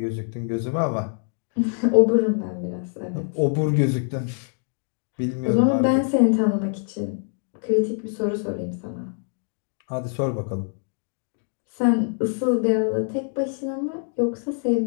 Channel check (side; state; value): right; silent; 62 dB below the other